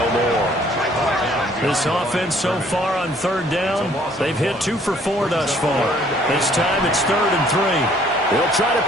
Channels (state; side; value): normal; both; correlation 0.60